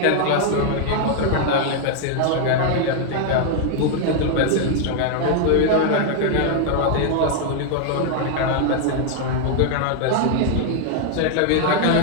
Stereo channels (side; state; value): both; different; correlation 0.00